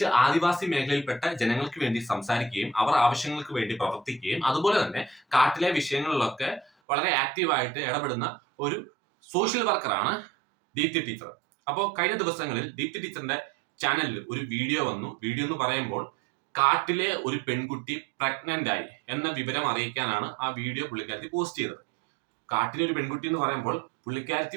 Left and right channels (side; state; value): left; drops out; at 6.7 s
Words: ആദിവാസി മേഖലയിൽപ്പെട്ട ജനങ്ങൾക്ക് വേണ്ടി സംസാരിക്കുകയും അവർ ആവശ്യങ്ങൾക്ക് വേണ്ടി പ്രവർത്തിക്കുകയും അതുപോലെ തന്നെ കാട്ടിലെ വിഷയങ്ങളിലൊക്കെ വളരെ ആക്റ്റീവായിട്ട് ഇടപെടുന്ന ഒരു സോഷ്യൽ വർക്കറാണ് ദീപ്തി ടീച്ചർ. അപ്പോൾ കഴിഞ്ഞ ദിവസങ്ങളിൽ ദീപ്തി ടീച്ചറിന്റെ ചാനലിൽ ഒരു വീഡിയോ വന്നു. വീഡിയോ എന്ന് പറയുമ്പോൾ കാട്ടിലെ ഒരു പെൺകുട്ടി പ്രഗ്നന്റ് ആയി എന്ന വിവരം അറിയിക്കാനാണ് ആ വീഡിയോ പുള്ളിക്കാരത്തി പോസ്റ്റ് ചെയ്തത്. കാട്ടിലെ ഒരു പെൺകുട്ടി എന്ന് പറയുമ്പോൾ